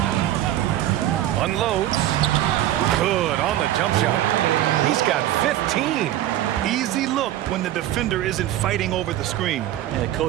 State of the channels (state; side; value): quieter; left; 13.3 dB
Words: Unloads. Good on the jump shot. He's got 15. Easy look when the defender isn't fighting over the screen. And the